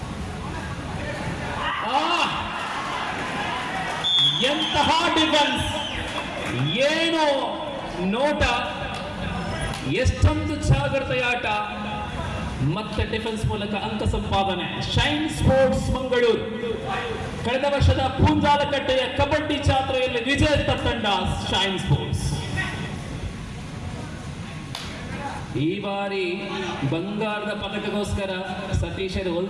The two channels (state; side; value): identical; both; correlation 1.00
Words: ಎಂತಹ ಡಿಫೆನ್ಸ್, ಏನು ನೋಟ, ಎಷ್ಟೊಂದು ಜಾಗ್ರತೆಯ ಆಟ, ಮತ್ತೆ ಡಿಫೆನ್ಸ್ ಮೂಲಕ ಅಂಕ ಸಂಪಾದನೆ. ಶೈನ್ ಸ್ಪೋರ್ಟ್ಸ್ ಮಂಗಳೂರು ಕಳೆದ ವರ್ಷದ ಪೂಂಜಾಲಕಟ್ಟೆಯ ಕಬಡ್ಡಿ ಜಾತ್ರೆಯಲ್ಲಿ ವಿಜೇತ ತಂಡ ಶೈನ್ ಸ್ಪೋರ್ಟ್ಸ್. ಈ ಬಾರಿ ಬಂಗಾರದ ಪದಕಗೋಸ್ಕರ ಸತೀಶರು